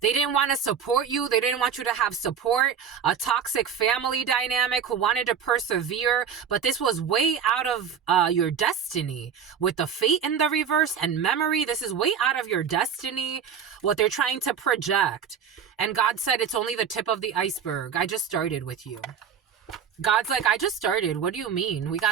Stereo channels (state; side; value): quieter; left; 7.5 dB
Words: They didn't want to support you. They didn't want you to have support. A toxic family dynamic who wanted to persevere. But this was way out of your destiny. With the fate in the reverse and memory, this is way out of your destiny. What they're trying to project. And God said it's only the tip of the iceberg. I just started with you. God's like, I just started. What do you mean? We